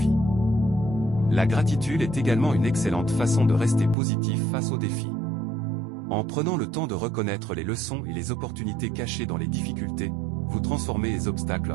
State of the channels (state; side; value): drops out; left; at 4.0 s